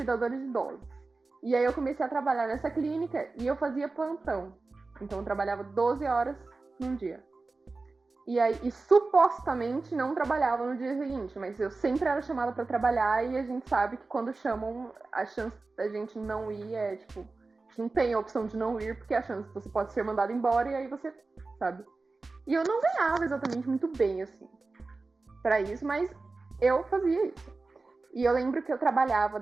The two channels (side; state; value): left; quieter; 3.7 dB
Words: de idosos. E aí, eu comecei a trabalhar nessa clínica e eu fazia plantão. Então, eu trabalhava 12 horas num dia. E supostamente não trabalhava no dia seguinte, mas eu sempre era chamada para trabalhar e a gente sabe que quando chamam, a chance da gente não ir é, tipo, a gente não tem a opção de não ir, porque a chance você pode ser mandado embora e aí você, sabe? E eu não ganhava exatamente muito bem, assim, pra isso, mas eu fazia isso. E eu lembro que eu trabalhava